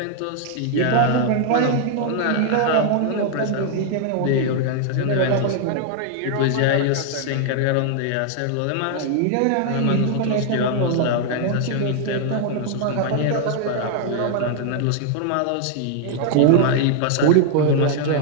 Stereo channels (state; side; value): different; both; correlation 0.00